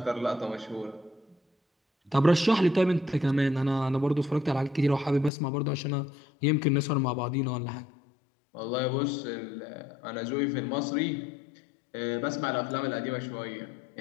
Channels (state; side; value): drops out; right; at 5.3 s